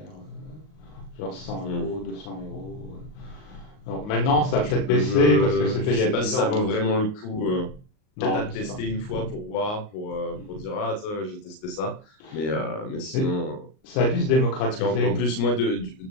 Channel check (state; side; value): late; right; 38 ms